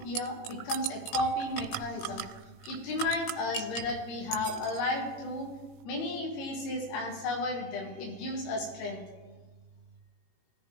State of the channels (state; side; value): late; right; 17 ms